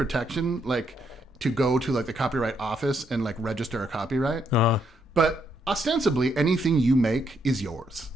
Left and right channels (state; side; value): normal; both; correlation 0.75